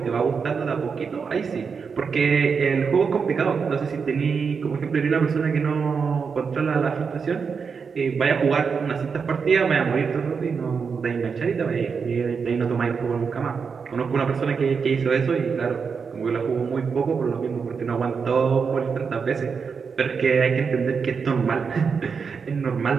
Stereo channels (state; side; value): quieter; left; 5.7 dB